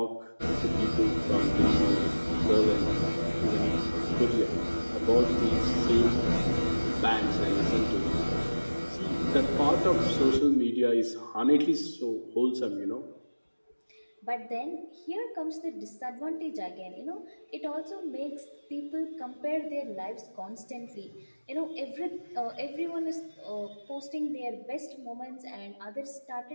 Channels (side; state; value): both; inverted; correlation -1.00